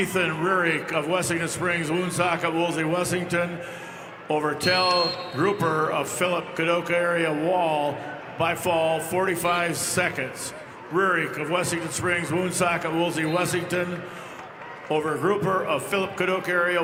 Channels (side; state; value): both; identical; correlation 1.00